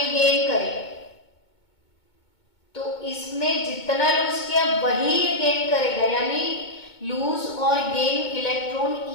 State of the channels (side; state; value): right; late; 2.2 ms